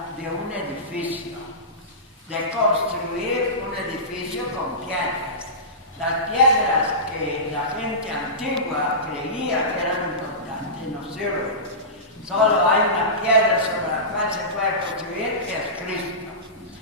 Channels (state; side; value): normal; both; correlation -0.20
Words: de un edificio, de construir un edificio con piedras. Las piedras que la gente antigua creía que eran importantes no sirven. Solo hay una piedra sobre la cual se puede construir, que es Cristo.